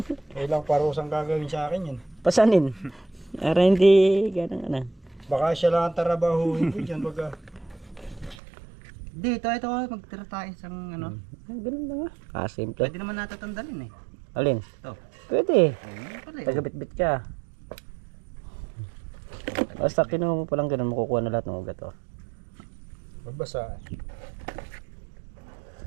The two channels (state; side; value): drops out; left; at 8.3 s